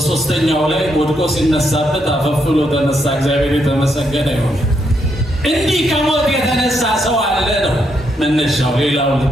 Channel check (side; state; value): both; normal; correlation 0.78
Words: ላይ ወድቆ ሲነሳበት አፈፍሎ ተነሳ። እግዚአብሔር የተመሰገነ ይሁን። እንዲህ ከሞት የተነሳ ሰው አለ ነው መነሻው። ሌላው